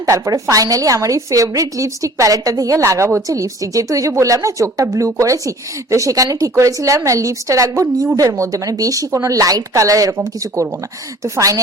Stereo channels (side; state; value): both; normal; correlation 0.48